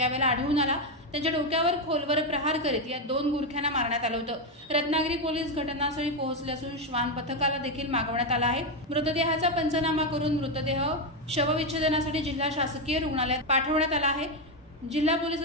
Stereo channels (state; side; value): normal; both; correlation 0.07